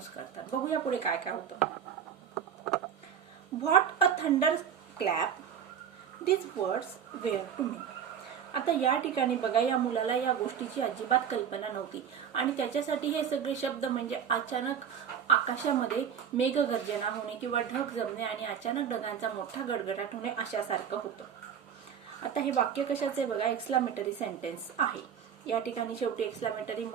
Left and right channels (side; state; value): left; quieter; 8.2 dB